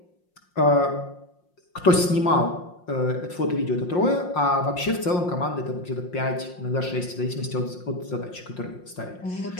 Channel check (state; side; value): late; right; 5.6 ms